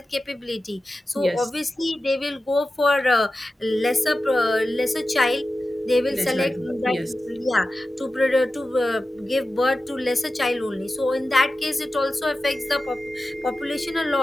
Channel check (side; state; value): both; normal; correlation 0.94